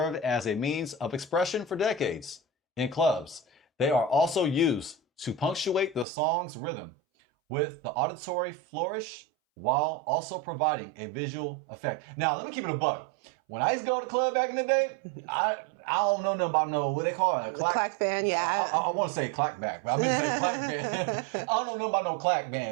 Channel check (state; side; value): drops out; left; at 6.1 s